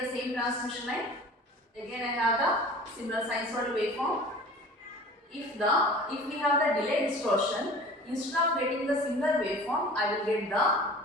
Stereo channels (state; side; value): normal; both; correlation 0.42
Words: the same transmission line. Again, I have the similar sinusoidal waveform. If we have the delay distortion, instead of getting the similar waveform, I will get the